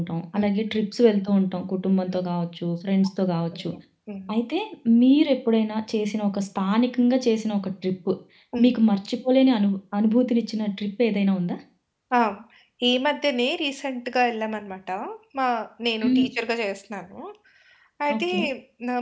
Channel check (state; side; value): identical; both; correlation 1.00